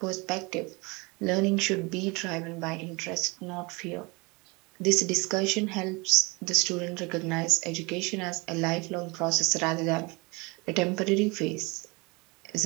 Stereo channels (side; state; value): left; quieter; 27.1 dB